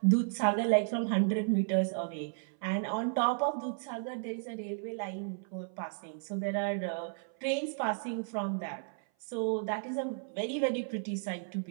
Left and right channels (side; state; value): left; silent; 56 dB below the other